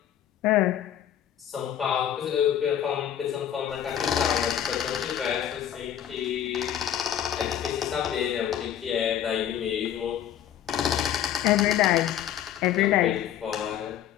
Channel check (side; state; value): right; quieter; 10.3 dB